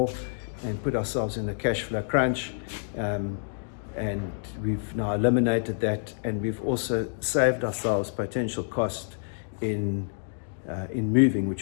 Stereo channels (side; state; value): right; silent; digital silence